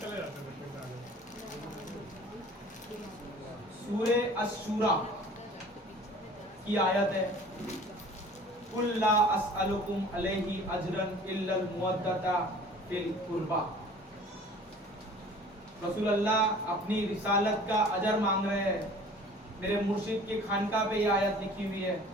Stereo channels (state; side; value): normal; both; correlation 0.47